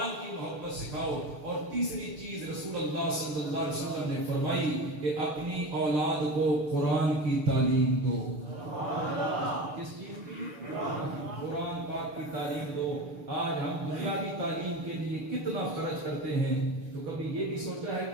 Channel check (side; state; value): left; late; 6.7 ms